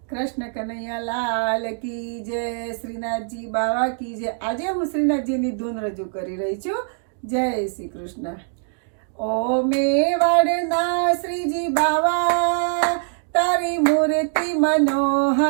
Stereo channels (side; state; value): left; silent; 64 dB below the other